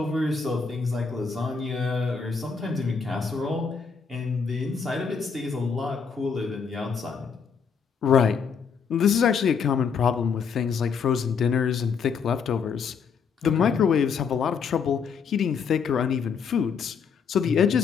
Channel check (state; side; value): quieter; right; 6.0 dB